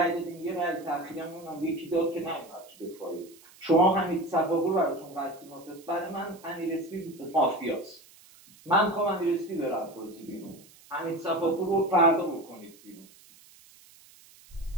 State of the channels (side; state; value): right; noise; hiss, 24 dB below the sound